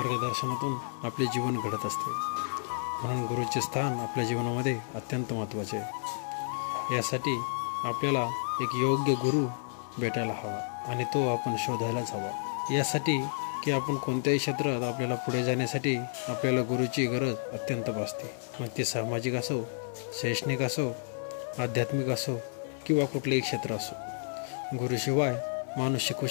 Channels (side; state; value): right; silent; digital silence